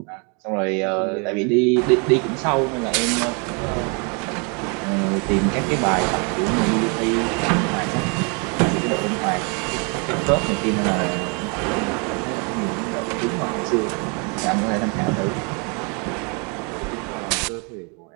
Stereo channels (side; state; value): left; quieter; 34.9 dB